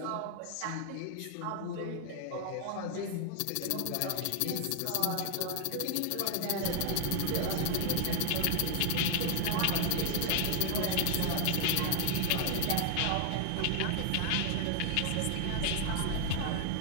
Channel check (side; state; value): both; different; correlation 0.00